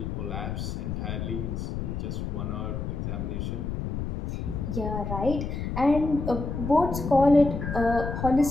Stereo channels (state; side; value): noise; left; rumble, 4 dB below the sound